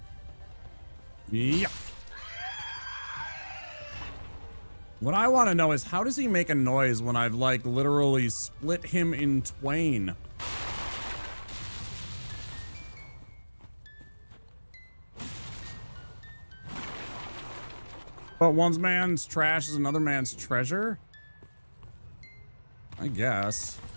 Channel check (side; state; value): both; inverted; correlation -1.00